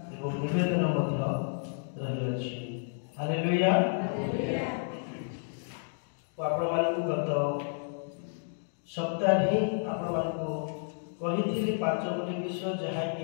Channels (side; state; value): right; silent; digital silence